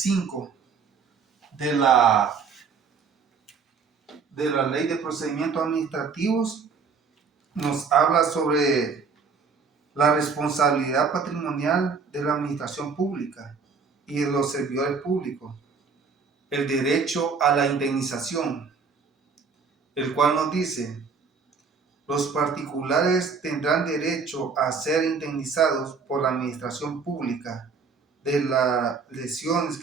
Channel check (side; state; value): left; quieter; 5.3 dB